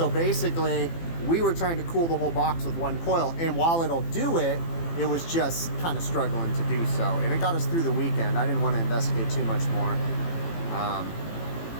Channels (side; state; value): right; late; 18 ms